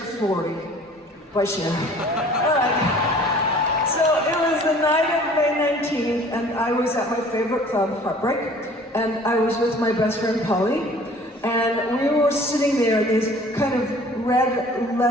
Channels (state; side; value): normal; both; correlation 0.50